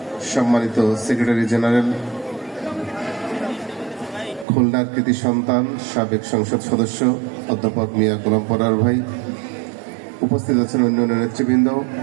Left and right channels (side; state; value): left; drops out; at 4.5 s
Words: সম্মানিত সেক্রেটারি জেনারেল, খুলনার কৃতি সন্তান, সাবেক সংসদ সদস্য অধ্যাপক মিয়া গোলাম পরার ভাই, উপস্থিত আছেন অন্যান্য নেতৃবৃন্দ,